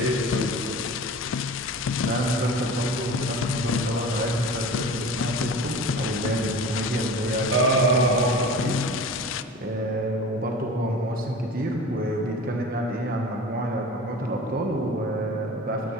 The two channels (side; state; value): both; normal; correlation 0.37